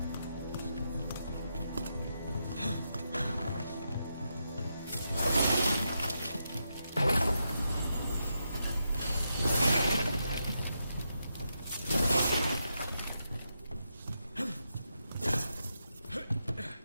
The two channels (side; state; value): both; inverted; correlation -0.84